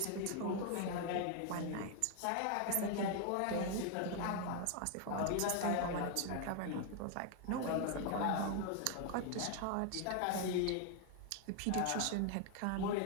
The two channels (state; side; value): different; both; correlation 0.00